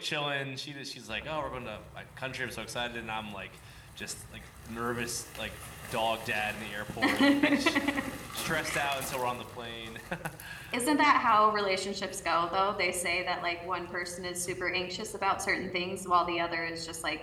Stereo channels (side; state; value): both; identical; correlation 1.00